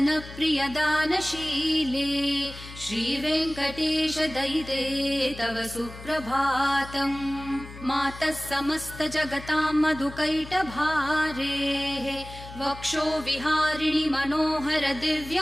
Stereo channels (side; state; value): left; noise; hum, 15 dB below the sound